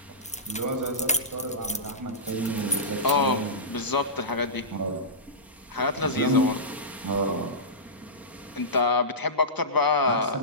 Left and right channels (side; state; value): both; normal; correlation -0.17